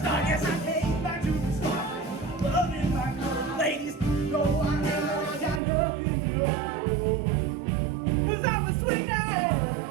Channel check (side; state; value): left; drops out; at 5.6 s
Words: Yes, I came back to the start. Loving my good ladies. No, I never got nothing to know. 'Cause I'm a sweet